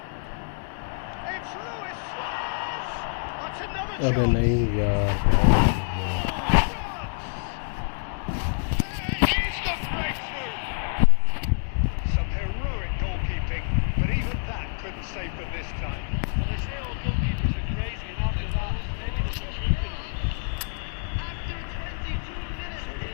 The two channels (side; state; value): right; silent; digital silence